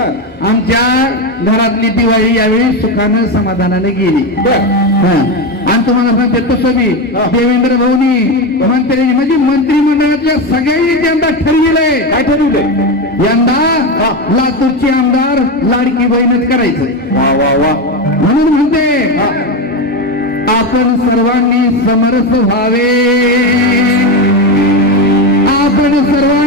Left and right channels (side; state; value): both; normal; correlation 0.15